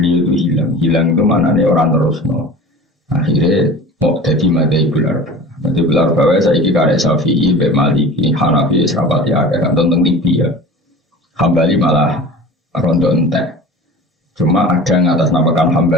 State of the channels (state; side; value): normal; both; correlation 0.38